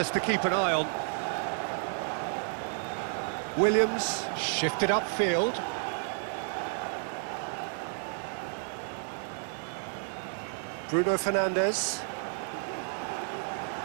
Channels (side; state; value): left; silent; digital silence